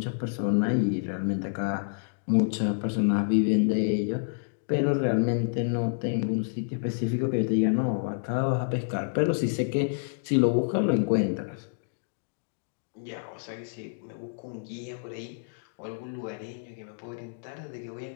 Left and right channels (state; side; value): silent; right; digital silence